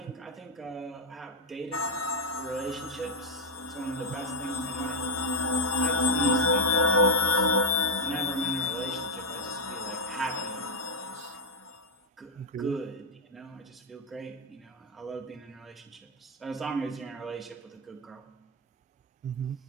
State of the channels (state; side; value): normal; both; correlation 0.01